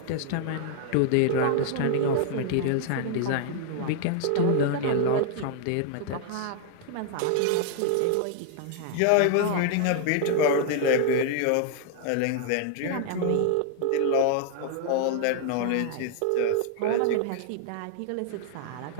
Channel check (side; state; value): both; different; correlation 0.00